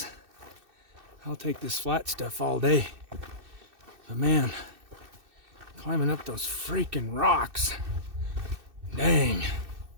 I'll take this flat stuff all day, but man, climbing up those freaking rocks, dang.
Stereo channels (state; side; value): late; left; 2.6 ms